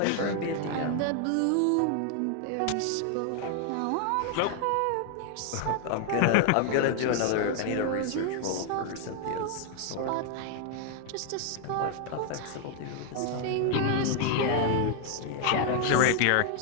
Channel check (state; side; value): different; both; correlation 0.00